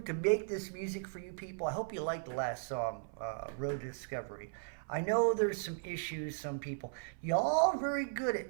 to make this music for you people. I hope you liked the last song, Road to Discovery. I know there's some issues. Some people, y'all are very good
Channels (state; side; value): silent; left; 53 dB below the other